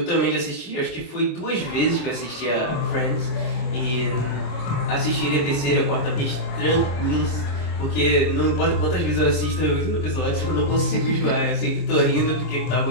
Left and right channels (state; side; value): late; right; 26 ms